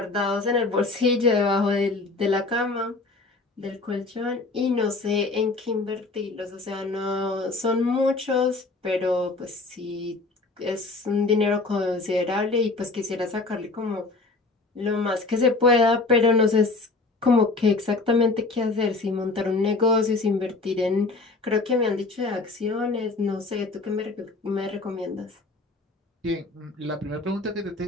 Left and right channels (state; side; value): quieter; right; 3.5 dB